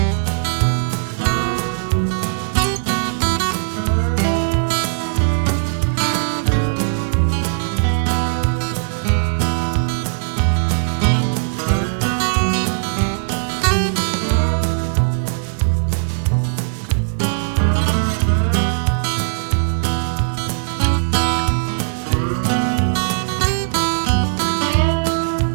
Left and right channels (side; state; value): left; silent; 67 dB below the other